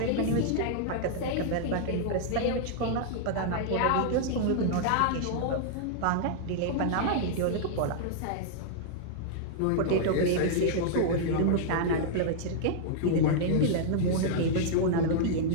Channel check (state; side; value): different; both; correlation -0.01